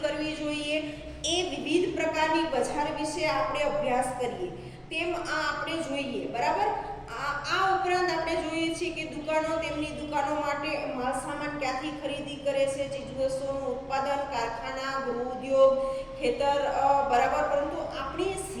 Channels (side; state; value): both; identical; correlation 1.00